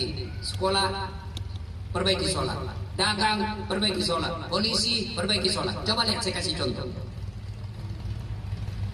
Sekolah, perbaiki sholat. Dagang, perbaiki sholat. Polisi, perbaiki sholat. Coba lihat, saya kasih contoh.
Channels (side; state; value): both; identical; correlation 1.00